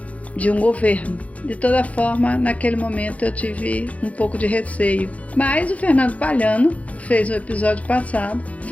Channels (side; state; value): right; late; 0.067 ms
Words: de um governo. De toda forma, naquele momento eu tive um pouco de receio. Mas o Fernando Palhano fez um episódio passado